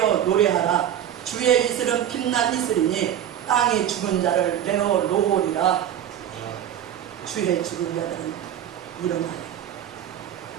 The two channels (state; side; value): quieter; left; 10.5 dB